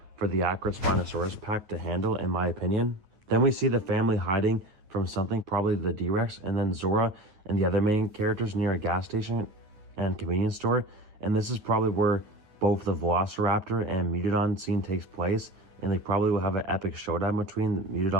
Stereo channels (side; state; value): left; late; 9.6 ms